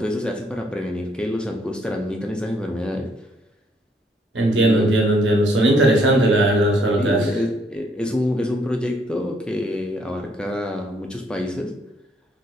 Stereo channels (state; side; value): normal; both; correlation 0.68